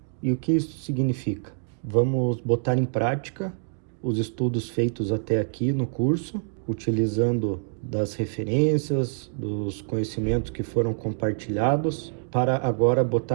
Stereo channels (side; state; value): left; silent; digital silence